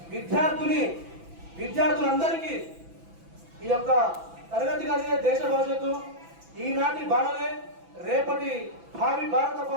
విద్యార్థులందరికీ ఈ యొక్క తరగతి గదియే దేశ భవిష్యత్తు, ఈనాటి బాలలే రేపటి భావి భారత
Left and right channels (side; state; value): left; late; 6.0 ms